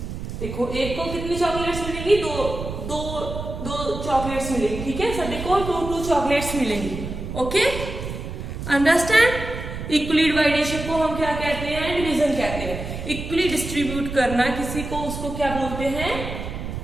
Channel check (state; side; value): noise; right; rumble, 7 dB below the sound